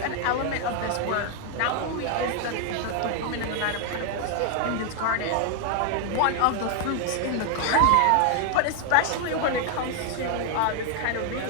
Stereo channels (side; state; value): both; different; correlation 0.00